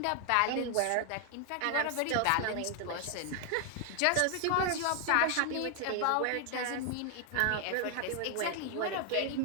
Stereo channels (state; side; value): different; both; correlation 0.00